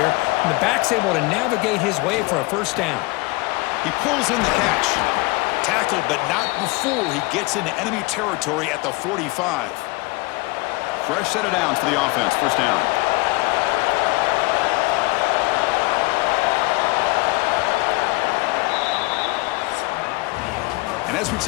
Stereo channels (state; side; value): quieter; right; 23.9 dB